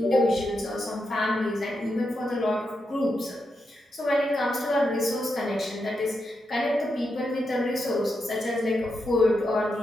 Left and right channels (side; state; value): both; normal; correlation 0.85